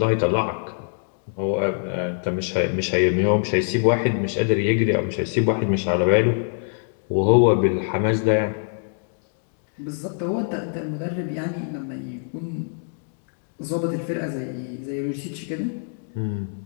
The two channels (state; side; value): silent; right; digital silence